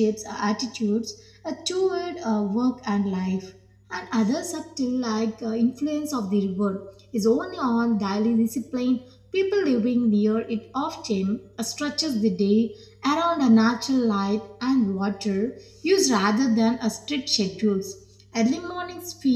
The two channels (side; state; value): both; identical; correlation 1.00